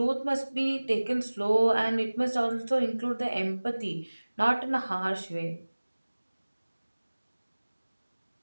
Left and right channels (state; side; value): inverted; both; correlation -1.00